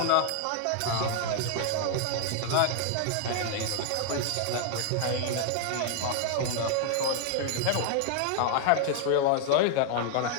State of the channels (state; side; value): different; both; correlation 0.00